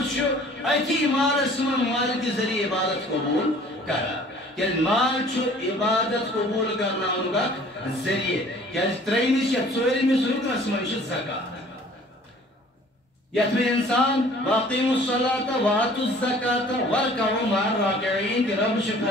شو ایتی مارس من مال کی ذریعے عبادت قبول کرا کہ مال چھو عبادت قبول کرنا انگا ذریعے کہ ترینیس یا ژوٗرِمِس رُکنس منٛز چھِ زکات یتھ میں انسان واقعیموا الصلاة وآتوا الزکاة وارکعوا مع الراکعین کہ رب چھُ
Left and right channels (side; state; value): both; normal; correlation 0.51